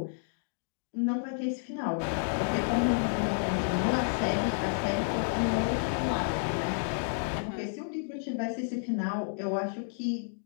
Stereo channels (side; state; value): right; silent; digital silence